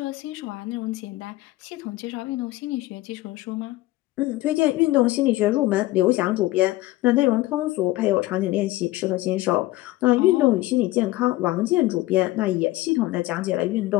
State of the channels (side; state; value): right; quieter; 17.9 dB